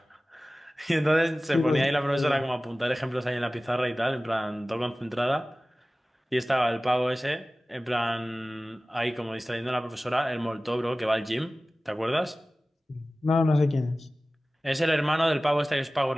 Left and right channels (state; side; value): normal; both; correlation 0.97